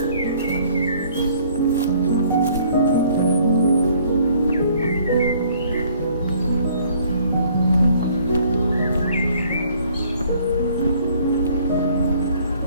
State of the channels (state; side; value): inverted; both; correlation -0.59